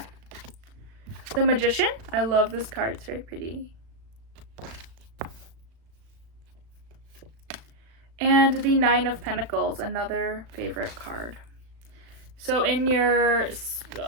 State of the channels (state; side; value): late; left; 36 ms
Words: The Magician. I love this card. It's very pretty. And the Nine of Pentacles, another favorite card. So in your,